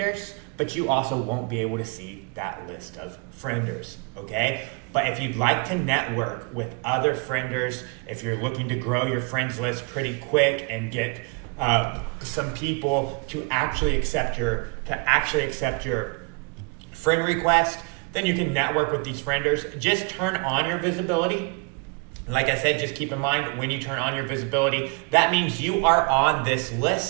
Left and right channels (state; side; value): quieter; left; 31.8 dB